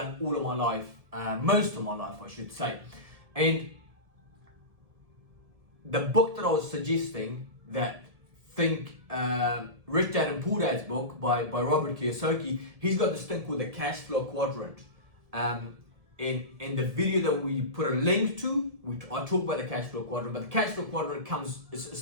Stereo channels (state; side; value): late; left; 1.7 ms